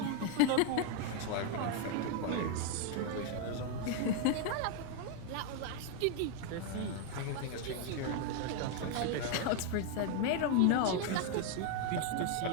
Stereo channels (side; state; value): both; different; correlation 0.01